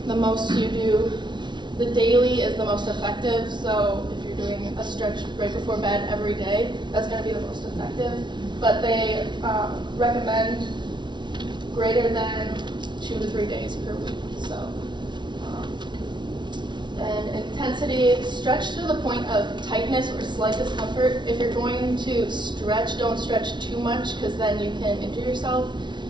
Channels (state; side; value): late; left; 0.22 ms